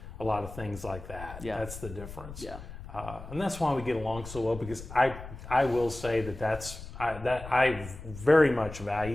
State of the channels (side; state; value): left; noise; rumble, 13 dB below the sound